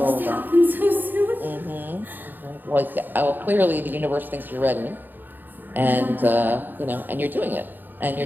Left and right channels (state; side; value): late; left; 0.091 ms